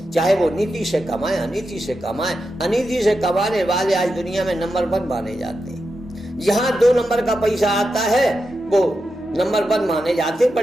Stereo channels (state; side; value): normal; both; correlation 0.88